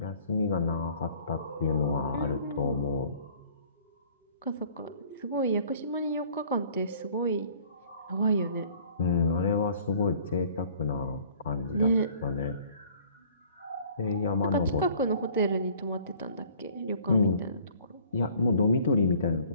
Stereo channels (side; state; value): both; inverted; correlation -0.53